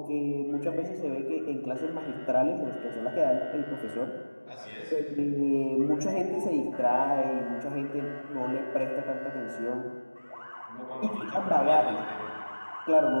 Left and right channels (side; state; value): both; inverted; correlation -1.00